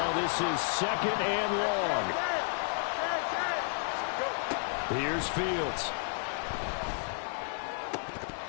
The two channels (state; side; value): silent; right; digital silence